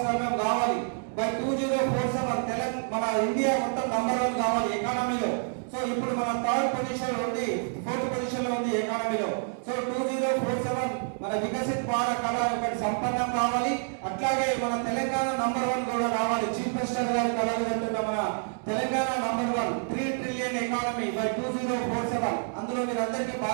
కావాలి. బై 2047 మన ఇండియా మొత్తం నంబర్ 1 కావాలి ఎకానమీలో. సో ఇప్పుడు మన 3rd పొజిషన్ లో ఉంది, 4th పొజిషన్ లో ఉంది ఎకానమీలో. సో 2047 మన వికసిత్ భారత్ కళ ఒకటి సంపన్నం కావాలి. అట్లాగే మన తెలంగాణ నంబర్ 1 కూడా కావాలి. చీఫ్ మినిస్టర్ గారి కళలు అంటున్న మన Telangana number 1 3 trillion economy by 2047. అందులో మీరందరికీ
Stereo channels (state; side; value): silent; left; 59 dB below the other